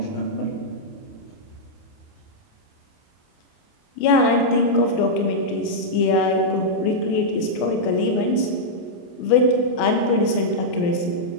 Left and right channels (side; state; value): right; late; 28 ms